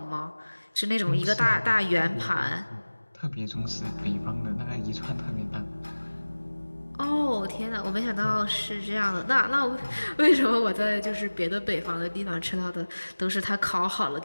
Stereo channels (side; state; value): both; inverted; correlation -1.00